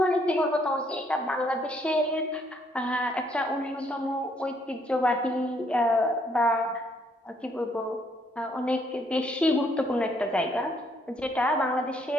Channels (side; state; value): both; normal; correlation 0.69